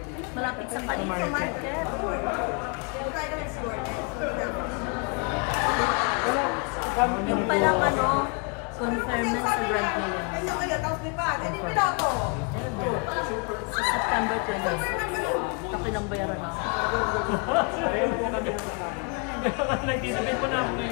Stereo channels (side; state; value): right; quieter; 32.7 dB